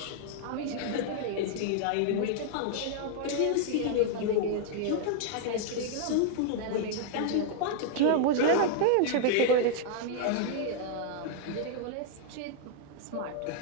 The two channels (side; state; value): both; different; correlation -0.01